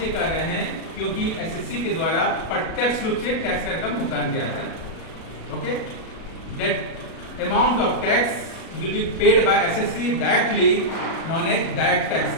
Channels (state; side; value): late; right; 37 ms